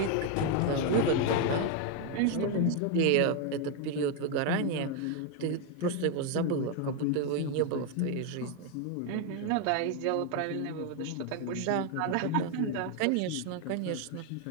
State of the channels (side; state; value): both; different; correlation 0.01